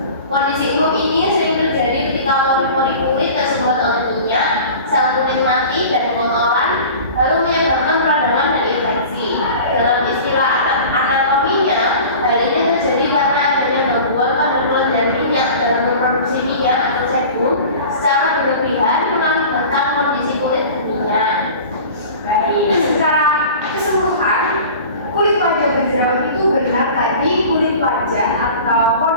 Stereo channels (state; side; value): inverted; both; correlation -0.39